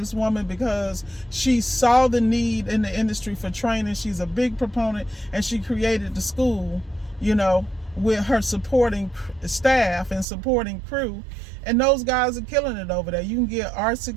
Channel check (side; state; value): left; drops out; at 10.2 s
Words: woman because she saw the need in the industry for training. She's a big proponent, and she created the school, with her supporting staff and supporting crew. And those guys are killing it over there. You can get